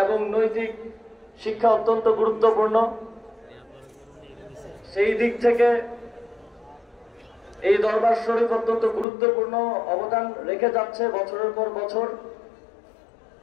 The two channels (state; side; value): drops out; right; at 9.1 s